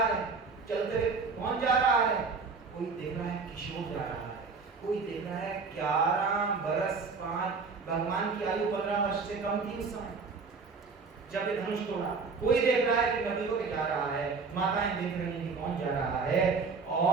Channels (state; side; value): quieter; left; 4.7 dB